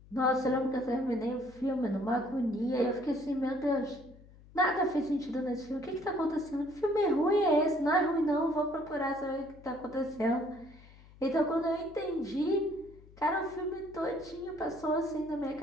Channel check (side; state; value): left; noise; hum, 23 dB below the sound